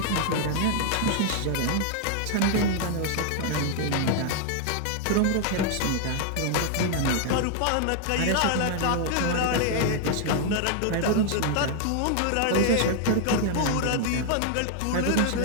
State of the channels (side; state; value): both; different; correlation 0.00